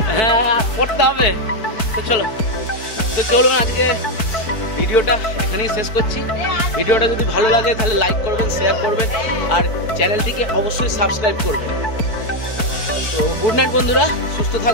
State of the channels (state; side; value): late; right; 4.6 ms